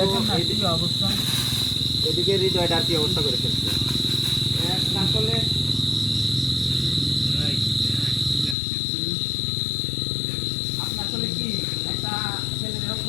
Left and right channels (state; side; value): drops out; right; at 8.6 s